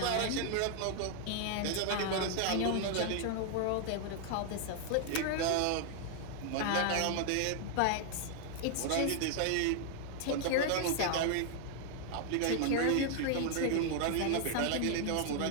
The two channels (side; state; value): both; different; correlation 0.00